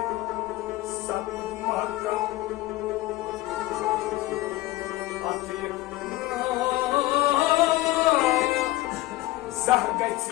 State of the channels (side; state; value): right; quieter; 18.0 dB